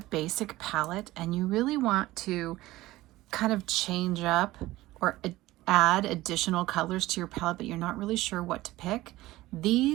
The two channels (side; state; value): left; quieter; 17.5 dB